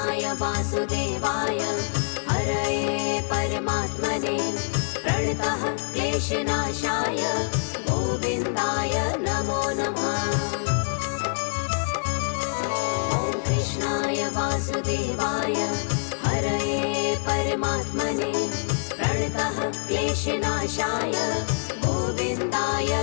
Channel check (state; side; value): silent; right; digital silence